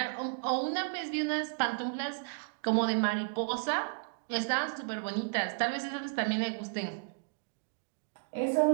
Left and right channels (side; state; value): left; silent; digital silence